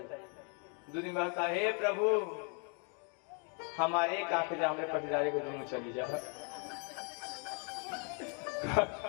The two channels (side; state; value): right; quieter; 38.9 dB